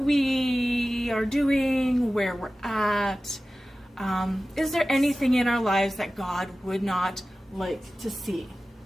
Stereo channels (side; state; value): both; normal; correlation 0.96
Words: are doing, where we're at. Is there anything in our lives that God would not like to see?